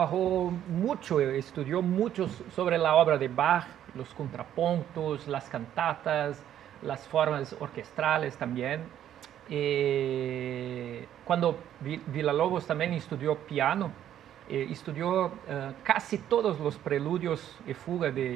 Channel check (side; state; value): left; quieter; 10.9 dB